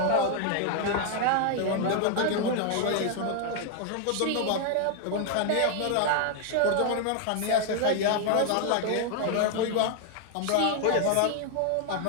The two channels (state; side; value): different; both; correlation 0.00